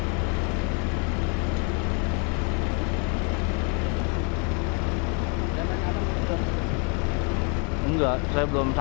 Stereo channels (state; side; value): quieter; right; 36.7 dB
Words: Enggak, saya belum